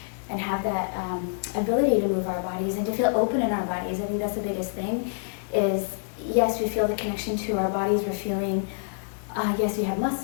and have that ability to move our bodies and to feel open in our bodies. I think that's the biggest thing is, yes, we feel the connection to our bodies. We're feeling, yes, we have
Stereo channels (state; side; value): silent; right; digital silence